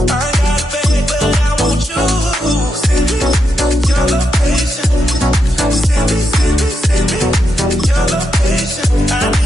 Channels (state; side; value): normal; both; correlation 0.84